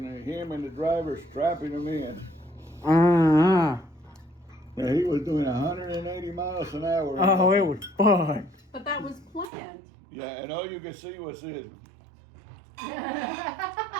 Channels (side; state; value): left; drops out; at 9.5 s